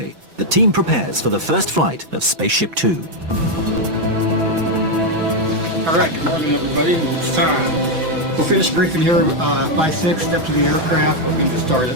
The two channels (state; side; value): late; left; 6.0 ms